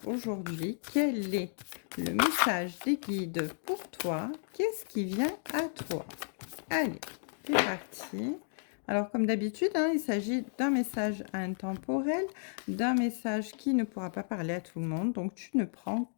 aujourd'hui. Quel est le message des guides pour toi? Qu'est-ce qui vient à toi? Allez, c'est parti. Alors, comme d'habitude, hein, il s'agit d'un message intemporel, d'un message qui ne pourra pas parler à tout le monde. Donc, tu ne prends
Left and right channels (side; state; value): right; silent; digital silence